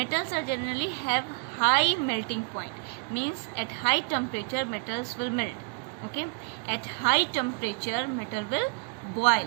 are generally have high melting point, means at high temperature metals will melt. Okay, at high temperature metal will boil.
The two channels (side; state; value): left; quieter; 32.4 dB